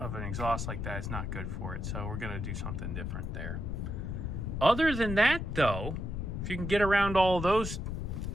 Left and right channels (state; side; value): noise; left; rumble, 4 dB below the sound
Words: an exhaust like that is not good for it, so we're gonna do something different there. Other than that, though, if you can get around all those